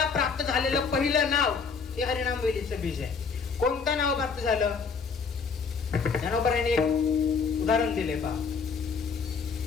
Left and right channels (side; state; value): right; quieter; 5.4 dB